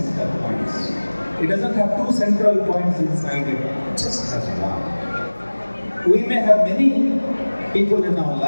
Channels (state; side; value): inverted; both; correlation -1.00